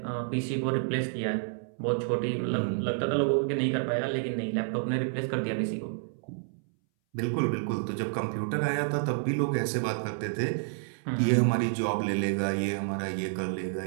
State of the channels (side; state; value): left; silent; 58 dB below the other